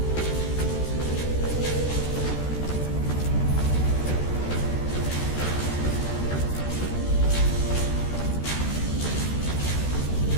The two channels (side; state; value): right; late; 13 ms